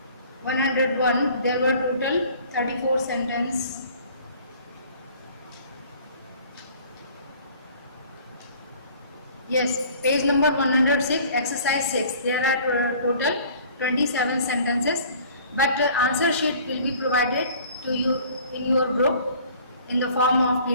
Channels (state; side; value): inverted; both; correlation -0.51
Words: 101. There were total 34 sentences. Yes, page number 106, exercise 6. There are total 27 sentences, but answer sheet will be provided to you in your group in the form of